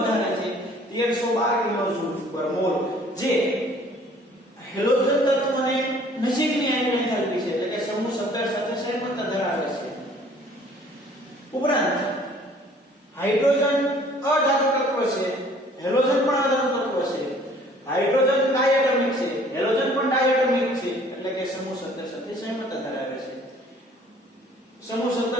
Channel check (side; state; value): both; normal; correlation 0.55